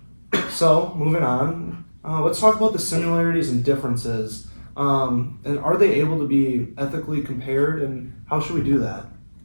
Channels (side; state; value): both; inverted; correlation -1.00